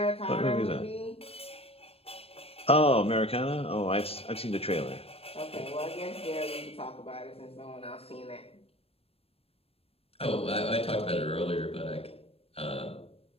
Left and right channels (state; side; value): late; right; 0.28 ms